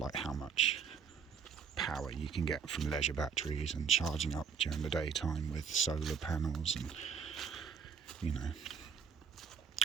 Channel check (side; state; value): left; quieter; 6.7 dB